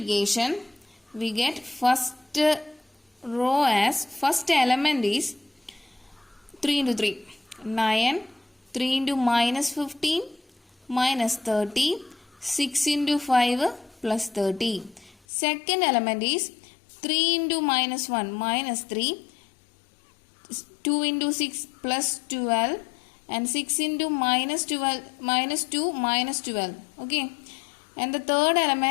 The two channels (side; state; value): right; drops out; at 15.2 s